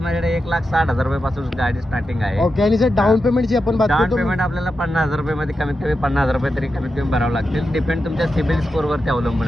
1,60,000 रुपयापासून गाडी स्टार्टिंग आहे. ओके, आणि जर डाऊन पेमेंटची आपण बात डाऊन करतो, पेमेंट आपल्याला 50,000 रुपयामध्ये कमीत कमी 50,000 रुपये तरी कमीत कमी भरावं लागतील. डिपेंड तुमच्या सिबिल स्कोर वरती अवलंबून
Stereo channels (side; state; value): both; normal; correlation 0.89